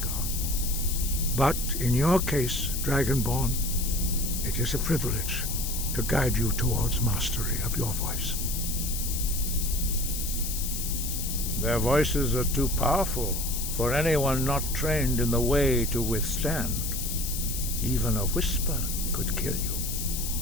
But in your case, Dragonborn, it is a privilege to guide you towards mastery of your voice. Their voices are too powerful for anyone not trained in the way to withstand. Even a whisper could kill you.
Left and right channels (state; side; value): noise; left; hiss, 4 dB below the sound